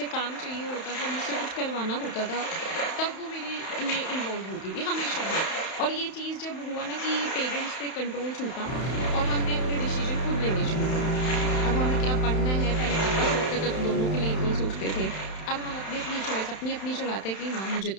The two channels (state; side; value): late; right; 31 ms